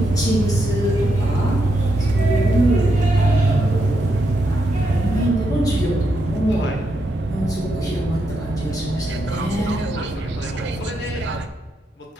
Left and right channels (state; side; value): normal; both; correlation 0.82